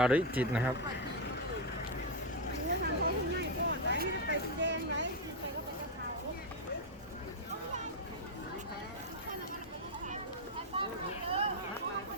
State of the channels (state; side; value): normal; both; correlation 0.02